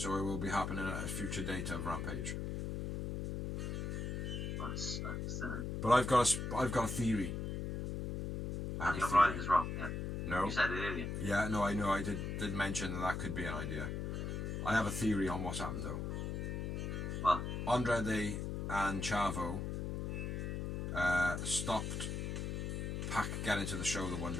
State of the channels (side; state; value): left; noise; hum, 3 dB below the sound